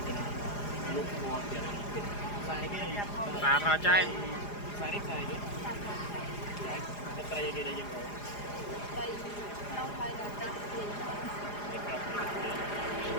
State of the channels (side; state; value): right; late; 4.9 ms